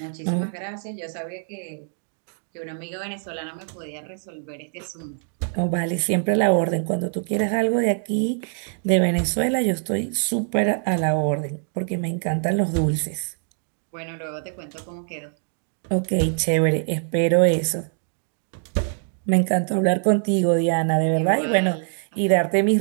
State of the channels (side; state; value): left; silent; 62 dB below the other